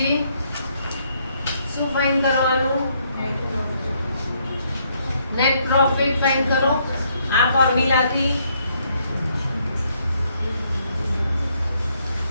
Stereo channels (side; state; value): both; inverted; correlation -0.71